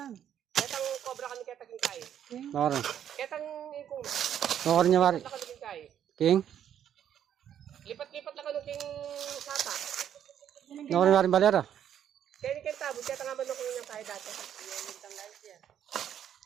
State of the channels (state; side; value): quieter; left; 9.8 dB